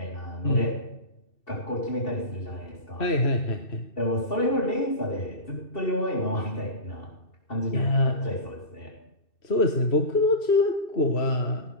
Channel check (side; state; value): right; late; 2.7 ms